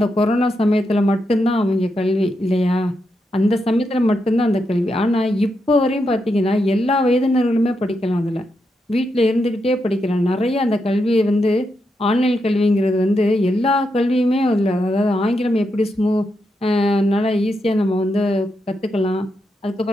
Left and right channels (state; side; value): normal; both; correlation 0.84